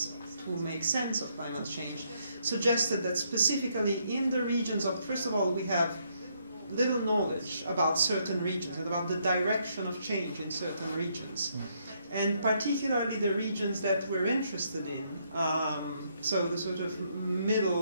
to make sense of climate change suggested that specifically in the regions of, first of all, we have little knowledge about certain regions and about the direction of change in certain regions. And particularly the regions that we're interested in, so the sort of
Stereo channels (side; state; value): both; inverted; correlation -0.73